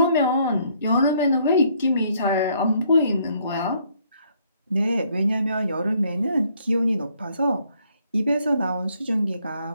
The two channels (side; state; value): both; inverted; correlation -0.67